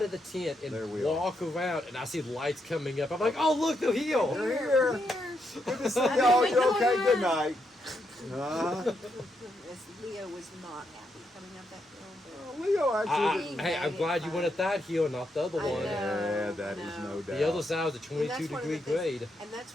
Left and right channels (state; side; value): normal; both; correlation 0.80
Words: of the tent and There we walk around, and I see lights coming up. I'm like, oh look, they're here. They're here. Good to see y'all. You okay? Good night. Leo was not happy coming up that hill. Leo actually. Hey, I'm glad you went at that hill, not the other I one. know. Yeah, that is no doubt. The other side was a And 22 that's one of degree the things- grade. And that's